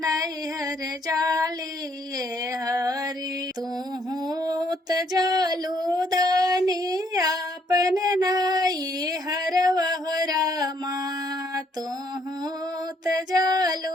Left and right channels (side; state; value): both; normal; correlation 0.68